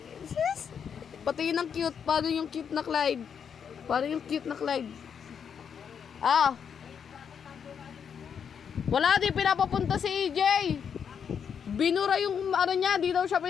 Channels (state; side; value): quieter; right; 7.3 dB